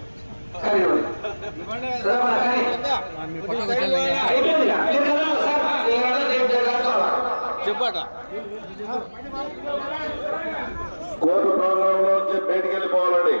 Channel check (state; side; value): inverted; both; correlation -1.00